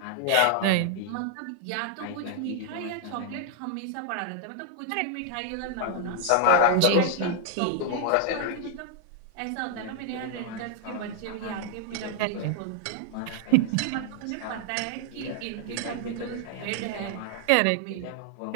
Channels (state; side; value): different; both; correlation 0.00